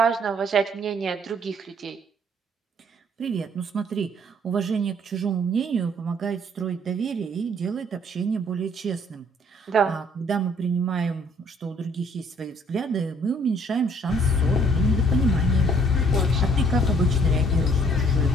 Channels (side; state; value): both; normal; correlation 0.61